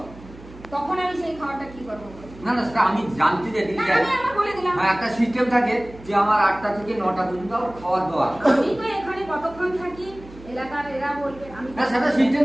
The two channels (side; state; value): right; noise; hum, 19 dB below the sound